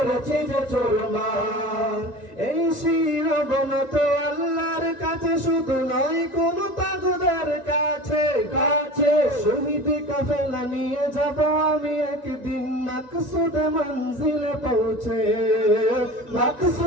যে চুরমার। এই শিরোমণ তো আল্লাহর কাছে শুধু নয় কোন তাজদার কাছে কাছে। শহীদ কাফেলা নিয়ে যাব আমি একদিন মকসুদে মঞ্জিলে পৌঁছে,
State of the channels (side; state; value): right; late; 1.9 ms